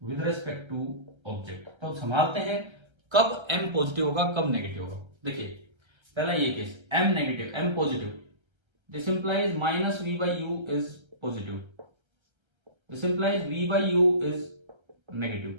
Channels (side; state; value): left; late; 1.3 ms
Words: विद रिस्पेक्ट टू ऑब्जेक्ट। तो संभालते हैं कब M पॉजिटिव होगा, कब नेगेटिव होगा। देखिए पहला ये case, M negative, M positive, this implies minus V by U is positive, this implies V by U is